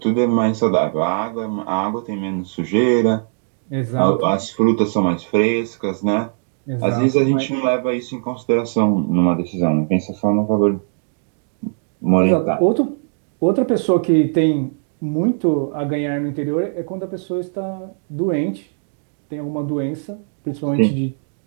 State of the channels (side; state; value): left; silent; digital silence